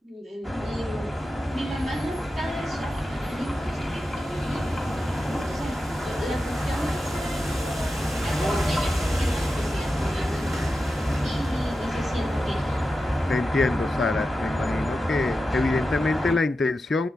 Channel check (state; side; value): normal; both; correlation 0.91